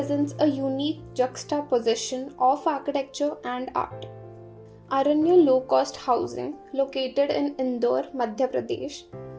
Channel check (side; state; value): both; identical; correlation 1.00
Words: a unique juxtaposition of architecture and art. Aranya low-cost housing, located in Indore, Madhya Pradesh,